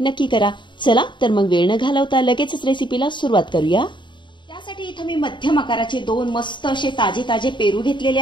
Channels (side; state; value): right; late; 0.23 ms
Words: नक्की करा. चला तर मग वेळ न घालवता लगेचच रेसिपीला सुरुवात करूया. त्यासाठी इथं मी मध्यम आकाराचे 2 मस्त असे ताजे पेरू घेतलेले